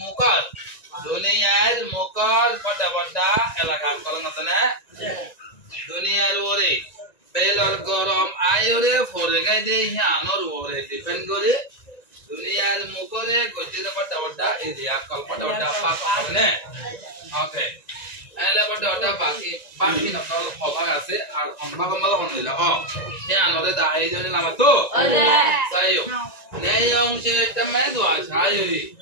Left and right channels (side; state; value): right; late; 1.9 ms